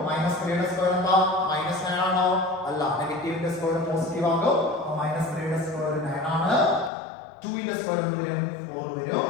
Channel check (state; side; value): drops out; right; at 6.9 s